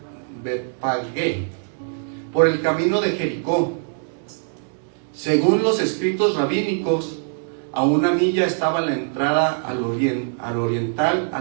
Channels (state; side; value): silent; left; digital silence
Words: Betfagé, por el camino de Jericó. Según los escritos rabínicos, a 1 milla estaba la entrada al oriental a